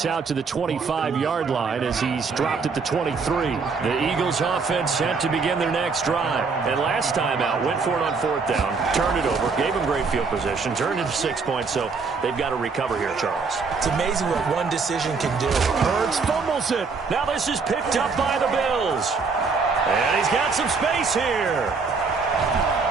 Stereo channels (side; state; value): left; quieter; 4.8 dB